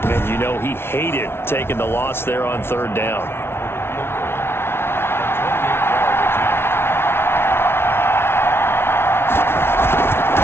you know he hated taking the loss there on 3rd down.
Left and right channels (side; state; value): right; late; 0.12 ms